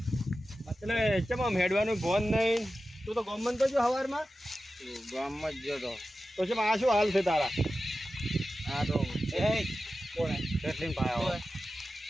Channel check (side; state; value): both; normal; correlation 0.93